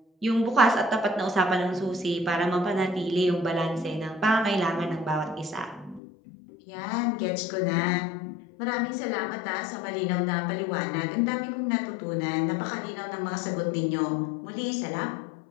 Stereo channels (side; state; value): right; drops out; at 6.0 s